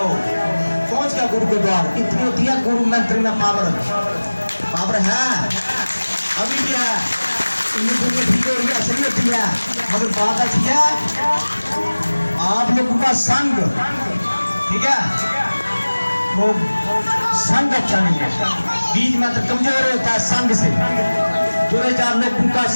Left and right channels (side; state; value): both; inverted; correlation -1.00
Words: पहुंच गया गुरु के द्वार। इतनी होती है गुरु मंत्र में पावर, पावर है, अभी भी है, दुनिया ठीक हो रही है, असली होती है। मगर बात अच्छी है, आप लोगों का संग, ठीक है, वो संग अच्छा नहीं है। बीज मंत्र कमजोर होता है संग से, 2-4 लोगों का